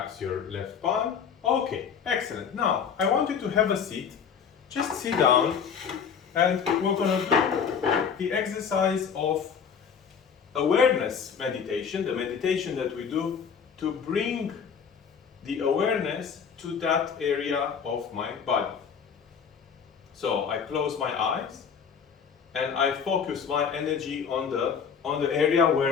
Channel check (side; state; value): right; quieter; 6.8 dB